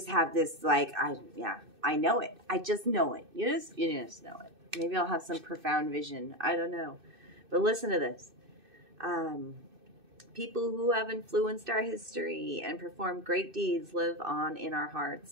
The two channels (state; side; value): late; left; 2.6 ms